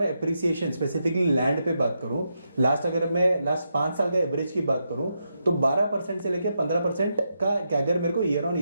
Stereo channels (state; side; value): inverted; both; correlation -0.83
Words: एप्रिसिएशन स्पेसिफिकली लैंड पे बात करूं, अगर मैं लास्ट 5 साल का एवरेज की बात करूं तो 12% से लेकर 15% का कैगर मेरे को ईयर ऑन